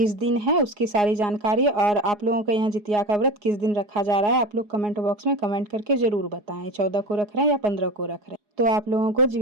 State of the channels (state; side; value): late; left; 4.8 ms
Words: दिन है उसकी सारी जानकारी, और आप लोगों के यहाँ जितिया का व्रत किस दिन रखा जा रहा है आप लोग कमेंट बॉक्स में कमेंट करके जरूर बताएं। 14 को रख रहे हैं या 15 को रख रहे हैं। तो आप लोगों को